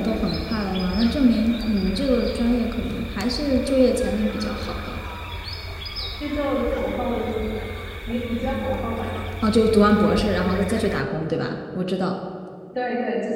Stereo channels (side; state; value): both; identical; correlation 1.00